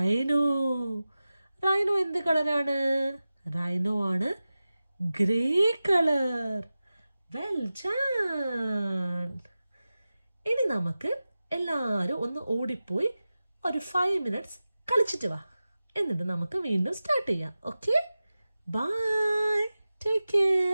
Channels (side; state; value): both; inverted; correlation -0.95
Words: റൈനോ എന്ത് കളറാണ്? റൈനോ ആണ് ഗ്രേ കളർ. Well done. ഇനി നമുക്ക് എല്ലാവരും ഒന്ന് ഓടിപ്പോയി ഒരു 5 minutes കളിച്ചിട്ട് വാ. എന്നിട്ട് നമുക്ക് വീണ്ടും സ്റ്റാർട്ട് ചെയ്യാം. Okay, bye, take